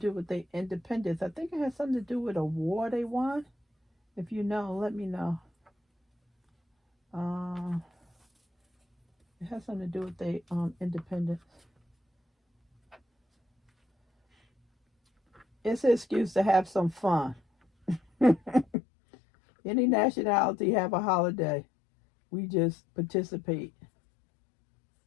with the independence. I think it has something to do with a war they won. If you know, let me know. It has something to do with the independence. It's an excuse to have some fun. Any nationality have a holiday. We just participate.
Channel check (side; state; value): right; drops out; at 18.7 s